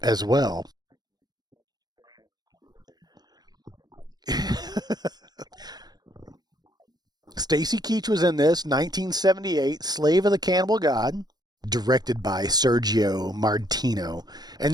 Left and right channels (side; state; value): left; late; 0.19 ms